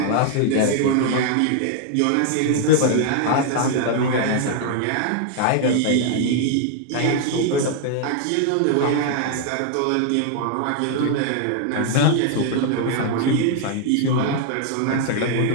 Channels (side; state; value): both; different; correlation 0.00